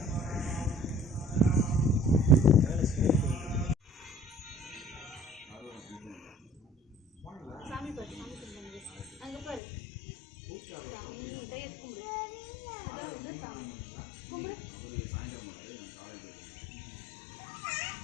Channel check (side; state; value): right; drops out; at 9.6 s